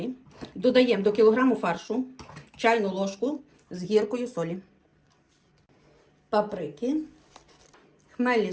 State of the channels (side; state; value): both; identical; correlation 1.00